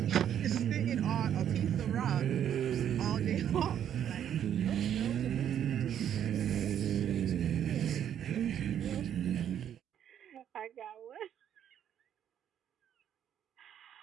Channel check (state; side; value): quieter; left; 9.7 dB